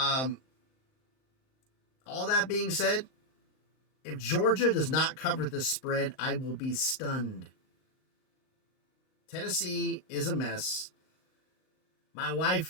that being said, if Georgia does not cover this spread, I will be stunned. Tennessee is a mess. My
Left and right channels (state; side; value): late; right; 38 ms